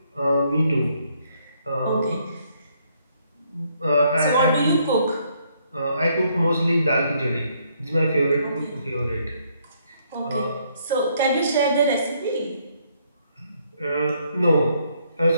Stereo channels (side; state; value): both; inverted; correlation -0.70